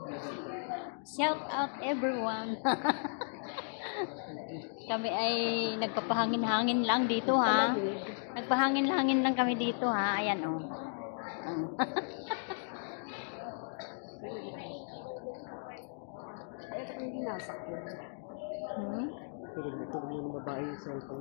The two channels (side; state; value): right; silent; digital silence